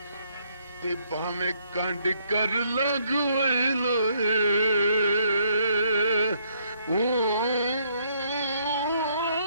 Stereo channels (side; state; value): both; inverted; correlation -0.69